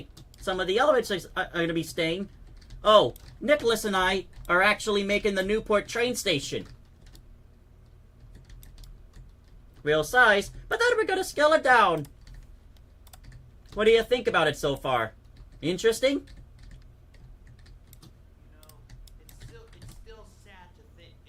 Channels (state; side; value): identical; both; correlation 1.00